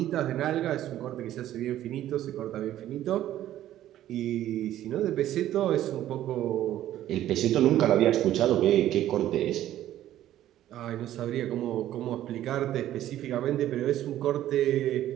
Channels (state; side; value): quieter; left; 12.8 dB